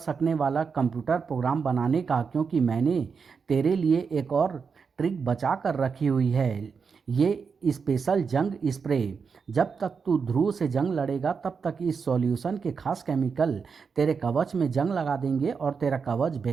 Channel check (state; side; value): quieter; left; 5.7 dB